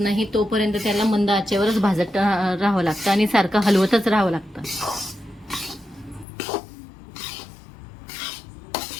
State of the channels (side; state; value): right; drops out; at 6.2 s